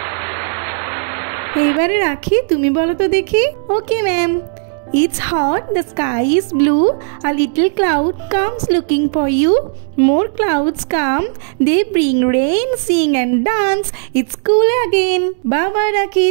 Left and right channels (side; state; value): left; silent; digital silence